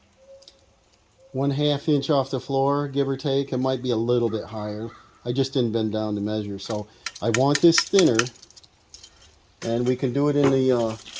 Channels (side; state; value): both; identical; correlation 1.00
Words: 1/2 inch off the floor, give or take. It might be a little bit higher. I just didn't bend down to measure. So I want this thinner, and we can do it in the